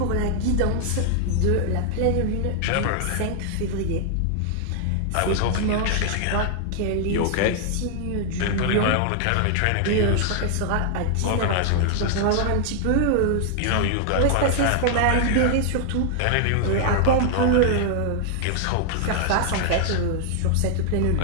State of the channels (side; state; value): both; different; correlation -0.01